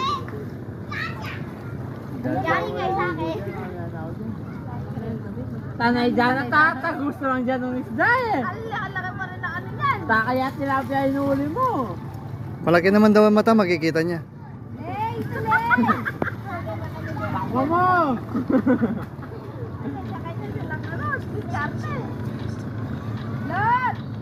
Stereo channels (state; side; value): identical; both; correlation 1.00